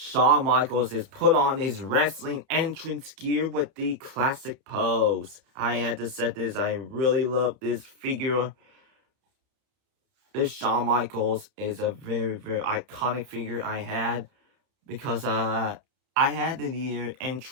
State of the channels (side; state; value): left; late; 30 ms